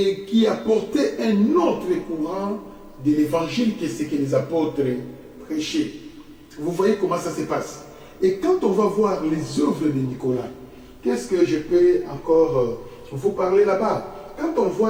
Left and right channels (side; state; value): both; identical; correlation 1.00